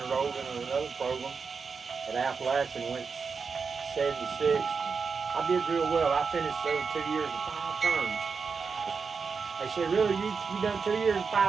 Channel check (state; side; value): quieter; left; 5.3 dB